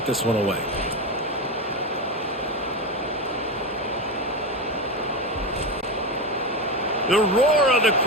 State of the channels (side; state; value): both; normal; correlation 0.15